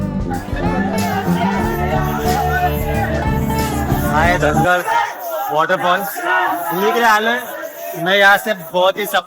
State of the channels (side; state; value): both; identical; correlation 1.00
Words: दंगल वाटरफॉल घूमने के लिए आए हैं. मैं यहाँ से बहुत ही